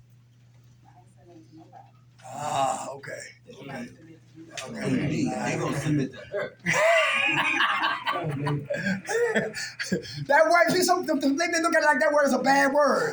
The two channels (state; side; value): identical; both; correlation 1.00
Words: nothing to nobody. Ah, okay. They gonna submit to her. That word, see, some they look at it like that word is a bad